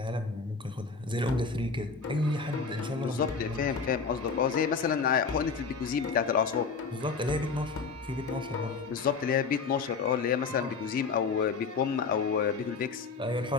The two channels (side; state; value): right; quieter; 5.0 dB